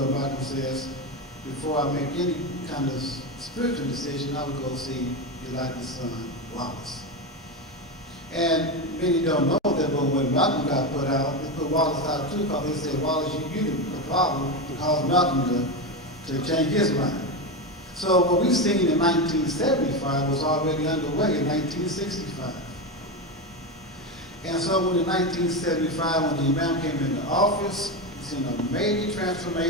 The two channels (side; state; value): both; normal; correlation 0.15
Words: Malcolm says, before I make any kind of spiritual decision, I would go see Elijah's son, Wallace. And many don't know that, but when Malcolm got put out, they put Wallace out too, because they said, Wallace, you the problem, to cause Malcolm to change his mind. So what we've seen in 1975 was already underway in 1965. And so when in 1975, when the Imam came into office, it's in a major